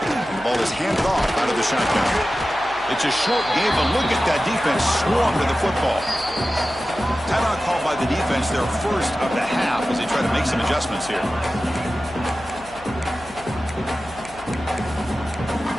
And the ball is handed off out of the shotgun. It's a short game, but look at that defense swarm to the football. Timeout called by the defense, their 1st of the half as they try to make some adjustments here.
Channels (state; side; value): noise; left; hum, 21 dB below the sound